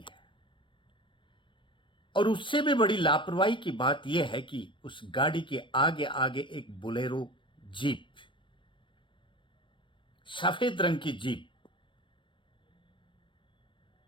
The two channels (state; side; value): late; right; 0.24 ms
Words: है। और उससे भी बड़ी लापरवाही की बात यह है कि उस गाड़ी के आगे आगे एक बोलेरो जीप, सफेद रंग की जीप,